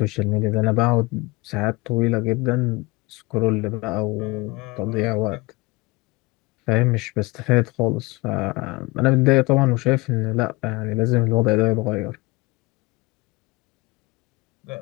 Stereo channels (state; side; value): quieter; right; 23.4 dB